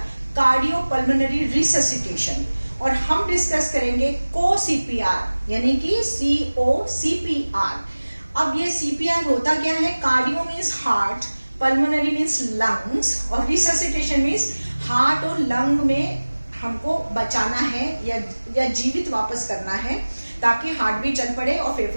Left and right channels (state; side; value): inverted; both; correlation -1.00